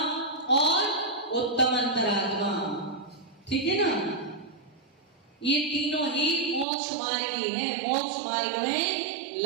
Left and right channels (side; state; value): left; drops out; at 6.7 s